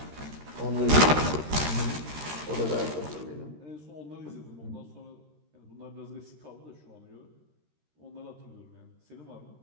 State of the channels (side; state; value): left; late; 13 ms